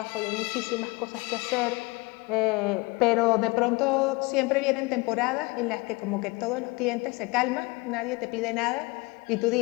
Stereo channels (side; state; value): right; quieter; 25.1 dB